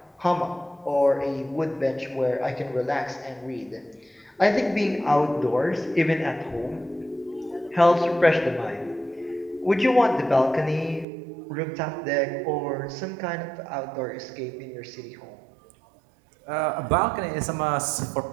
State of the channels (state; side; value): drops out; left; at 11.1 s